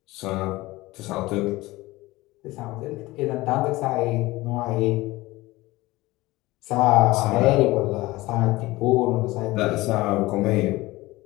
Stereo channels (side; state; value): right; quieter; 19.7 dB